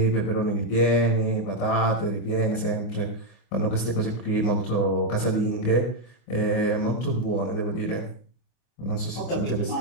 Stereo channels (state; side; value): late; right; 25 ms